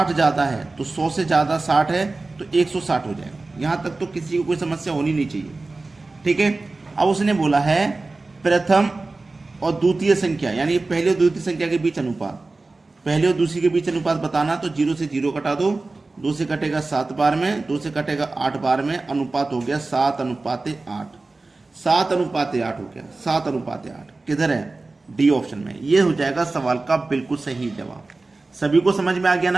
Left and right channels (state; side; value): quieter; left; 3.4 dB